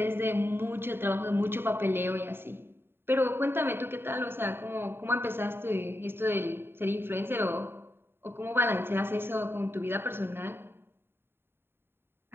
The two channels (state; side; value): late; left; 0.11 ms